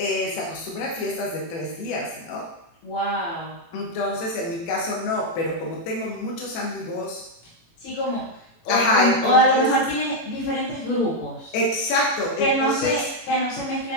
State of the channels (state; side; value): late; right; 18 ms